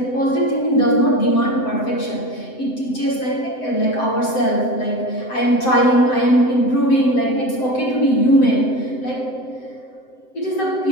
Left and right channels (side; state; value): right; late; 7.8 ms